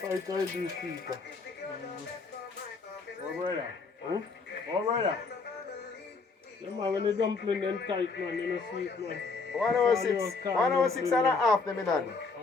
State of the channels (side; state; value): right; quieter; 4.3 dB